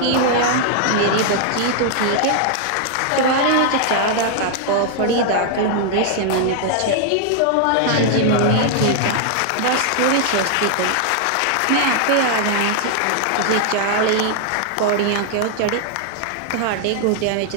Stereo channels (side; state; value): both; different; correlation 0.00